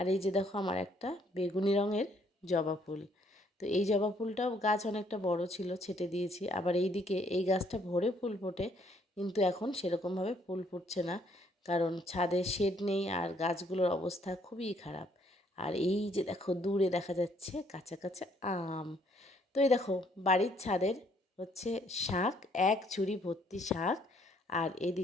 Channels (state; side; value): normal; both; correlation 0.66